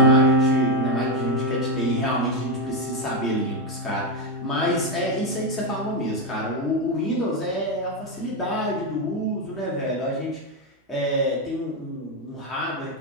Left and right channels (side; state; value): both; normal; correlation 0.07